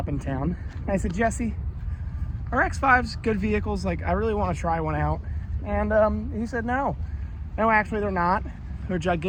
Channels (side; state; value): both; identical; correlation 1.00